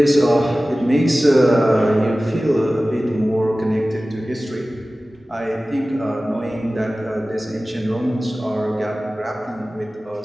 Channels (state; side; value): normal; both; correlation 0.97